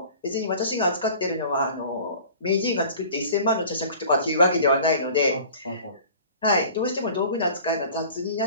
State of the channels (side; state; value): both; inverted; correlation -0.45